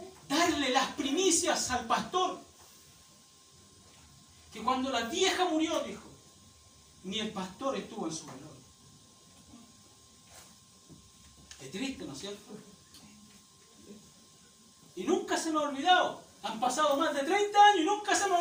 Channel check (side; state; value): both; identical; correlation 1.00